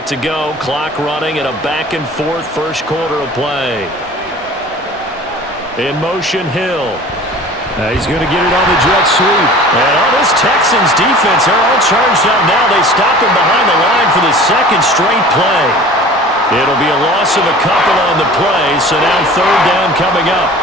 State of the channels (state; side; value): normal; both; correlation 0.43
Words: to go, clock running, and a back-and-forth first quarter of play. In motion, Hill. He's going to get it on the jet sweep. And on this Texans defense, they're all charged up now. They stop him behind the line for the 2nd straight play. It'll be a loss of a couple on the play, so now 3rd down coming up.